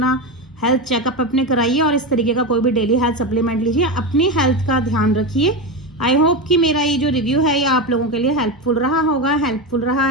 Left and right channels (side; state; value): both; normal; correlation 0.17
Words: हेल्थ चेकअप अपने कराइए, और इस तरीके का कोई भी डेली हेल्थ सप्लीमेंट लीजिए, अपनी हेल्थ का ध्यान रखिए। आई होप कि मेरा ये जो रिव्यू है ये आप लोगों के लिए हेल्पफुल रहा होगा। हेल्पफुल रहा